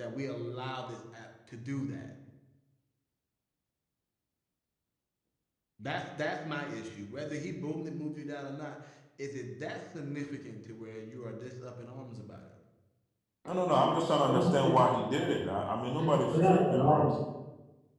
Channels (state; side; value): identical; both; correlation 1.00